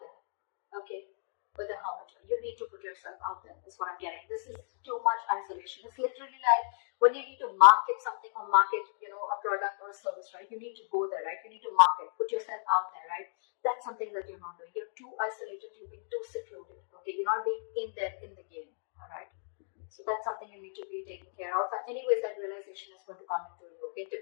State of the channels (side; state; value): right; silent; digital silence